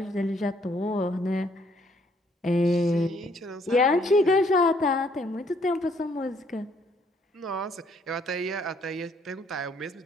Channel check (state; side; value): normal; both; correlation 0.66